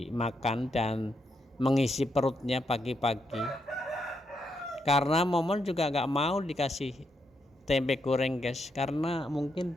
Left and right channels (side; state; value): both; normal; correlation 0.80